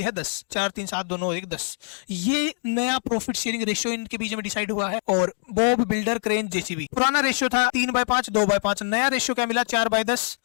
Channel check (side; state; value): right; silent; digital silence